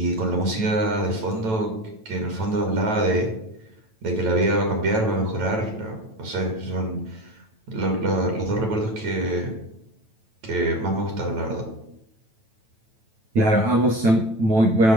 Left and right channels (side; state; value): left; late; 9.1 ms